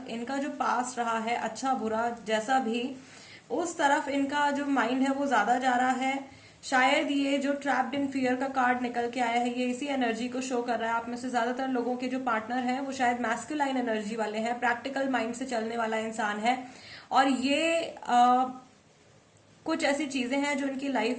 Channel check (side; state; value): both; identical; correlation 1.00